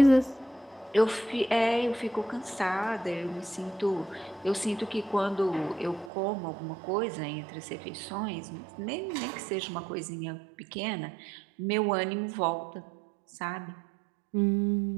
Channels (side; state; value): left; drops out; at 6.1 s